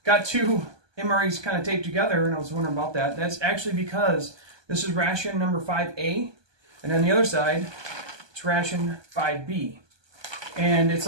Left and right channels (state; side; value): late; left; 1.2 ms